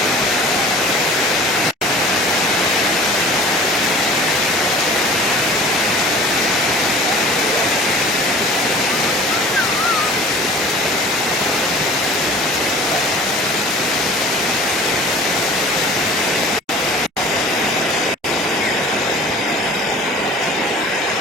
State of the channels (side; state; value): both; normal; correlation 0.44